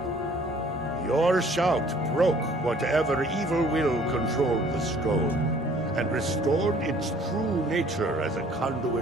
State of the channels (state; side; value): normal; both; correlation 0.56